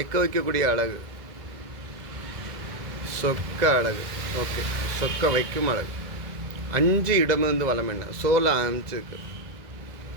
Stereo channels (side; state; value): left; late; 2.0 ms